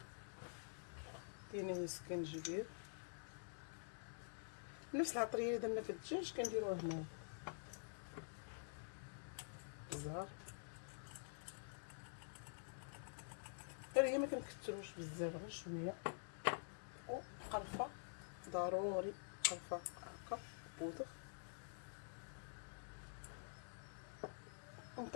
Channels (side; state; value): right; silent; digital silence